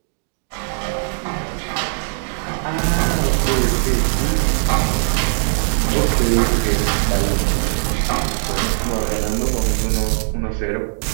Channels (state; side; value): silent; left; digital silence